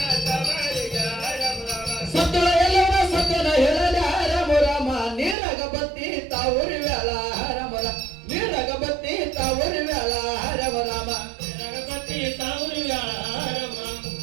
ಸತ್ತಳ ಎಲ್ಲವರ ಸತ್ಯನ ಹೇಳಲ ರಮ ರಾಮ ನೀರಗ ಬತ್ತಿ ತಾವುರಿ ವ್ಯಾಳ ರಮ ರಾಮ ನೀರಗ ಬತ್ತಿ ತಾವುರಿ ವ್ಯಾಳ ರಮ ರಾಮ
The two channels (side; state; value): left; drops out; at 5.4 s